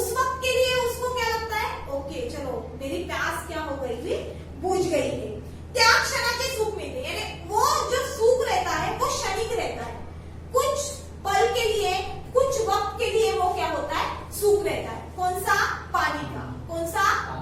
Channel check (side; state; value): both; identical; correlation 1.00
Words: वक्त के लिए उसको क्या लगता है? ओके चलो मेरी प्यास क्या हो गई थी, बुझ गई है। त्या क्षणाचे सुख मिलते, यानी वो जो सुख रहता है वो क्षणिक रहता है, कुछ पल के लिए, कुछ वक्त के लिए वो क्या होता है? सुख रहता है। कौन सा? पानी का। कौन सा?